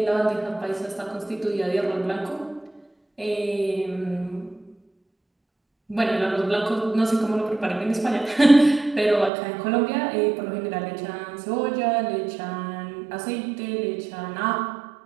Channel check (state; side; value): drops out; left; at 9.3 s